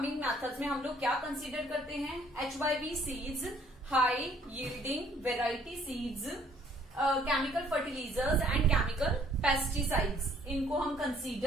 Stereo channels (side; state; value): both; normal; correlation 0.61